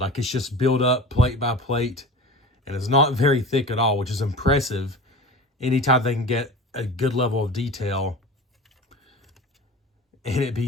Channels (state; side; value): normal; both; correlation 0.34